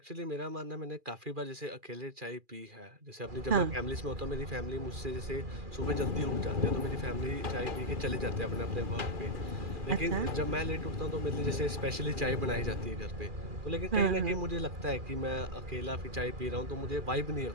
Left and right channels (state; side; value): late; left; 2.4 ms